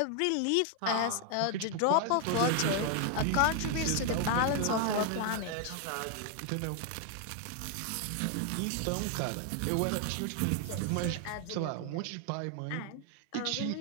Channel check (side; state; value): both; different; correlation 0.00